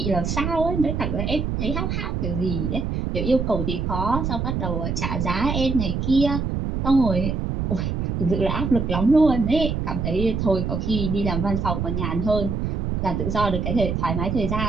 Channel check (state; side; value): noise; right; rumble, 1 dB below the sound